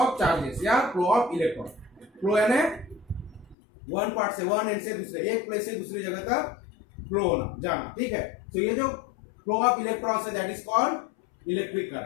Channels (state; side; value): drops out; right; at 3.6 s